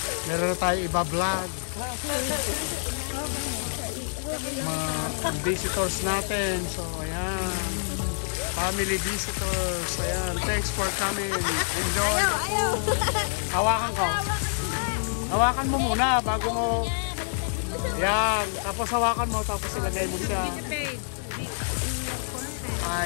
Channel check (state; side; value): silent; right; digital silence